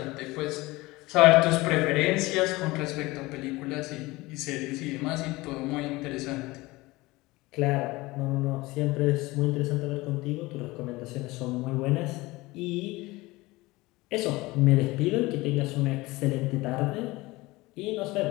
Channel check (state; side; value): quieter; right; 21.0 dB